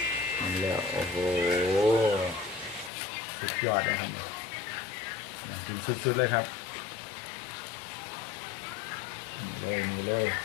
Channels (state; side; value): drops out; right; at 2.9 s